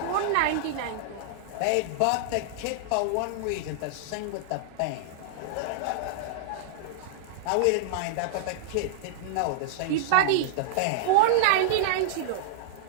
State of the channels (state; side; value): different; both; correlation -0.01